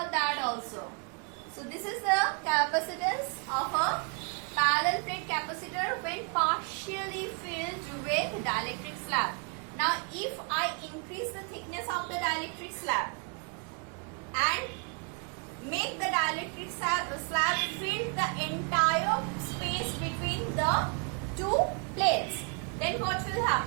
that also. So this is the capacitance of a parallel plate capacitor when partially filled with dielectric slab. Now if I increase the thickness of the dielectric slab and make the dielectric slab fill the entire space between the two plates, then what will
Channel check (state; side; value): quieter; left; 36.1 dB